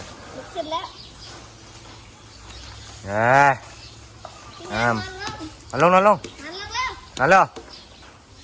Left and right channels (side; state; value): both; identical; correlation 1.00